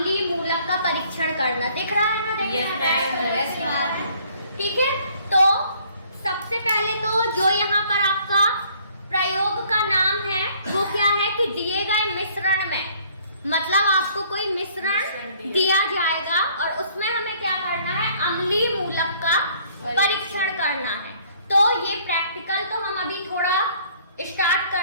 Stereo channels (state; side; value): inverted; both; correlation -0.60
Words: मूलक का परीक्षण करना। दिख रहा है ना? यस। ठीक है, तो सबसे पहले तो जो यहाँ पर आपका प्रयोग का नाम है वो क्या है कि दिए गए मिश्रण में, मतलब आपको कोई मिश्रण दिया जाएगा और उसमें हमें क्या करना है? अम्लीय मूलक का परीक्षण करना है। तो ये प्रैक्टिकल तो हम अभी थोड़ा स्टार्ट